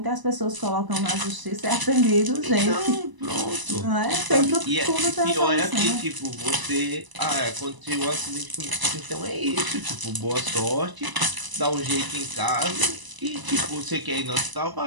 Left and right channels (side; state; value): left; late; 1.0 ms